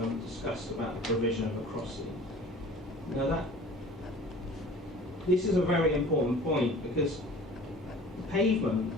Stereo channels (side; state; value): both; normal; correlation 0.45